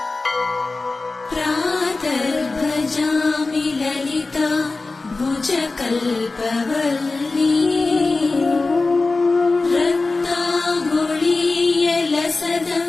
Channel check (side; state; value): right; quieter; 3.6 dB